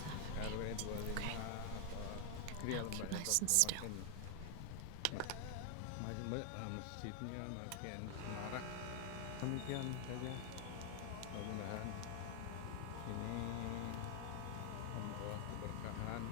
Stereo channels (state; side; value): different; both; correlation 0.00